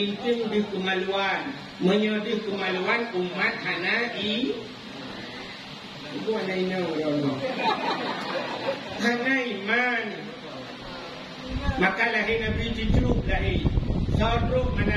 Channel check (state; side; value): identical; both; correlation 1.00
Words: di kemaluan menyedih kemaluan umat Hanai itu Hanai Hanai iman maka lahir Nabi diceruk lahir sorok